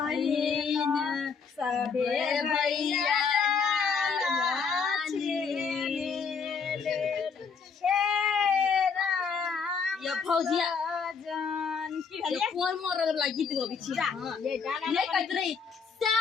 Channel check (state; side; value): quieter; right; 5.7 dB